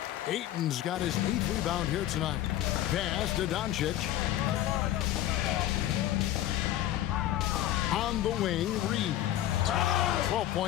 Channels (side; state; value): right; quieter; 13.1 dB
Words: Ayton's got his 8th rebound here tonight. Pass to Doncic. On the wing, Reeves. 12